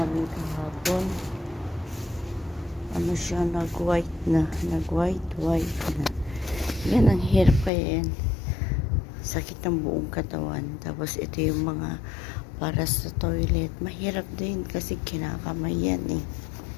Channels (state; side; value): drops out; right; at 7.7 s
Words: kahapon. Ano siya, nag-white na. Nag-white na. Yan, ang hirap kaya yan. Sakit ng buong katawan. Tapos ito yung mga para sa toilet. Mahirap din kasi kinakamay yan eh.